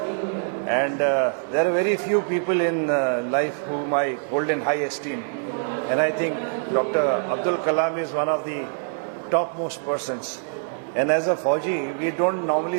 and there are very few people in life whom I hold in high esteem. And I think Dr. Abdul Kalam is one of the topmost persons. And as a Fauji, we don't normally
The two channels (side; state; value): left; silent; digital silence